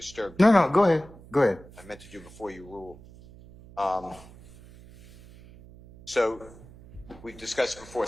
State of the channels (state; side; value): noise; right; hum, 20 dB below the sound